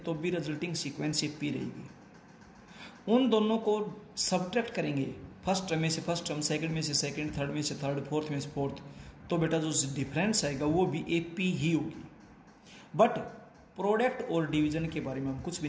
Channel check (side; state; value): both; identical; correlation 1.00